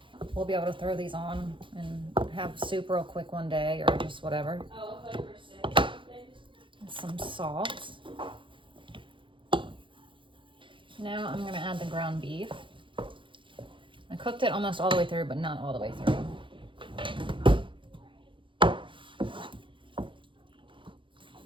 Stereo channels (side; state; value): left; late; 0.24 ms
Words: We'll be able to throw these on and have soup real quick one day, or just whatever. Oh, I thought you were sick. And some salt. Now I'm gonna add the ground beef. I cooked it almost all the way through, but not all the way through.